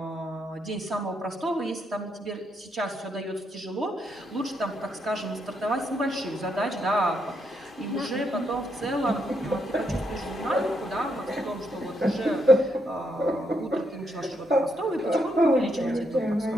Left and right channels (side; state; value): both; normal; correlation 0.78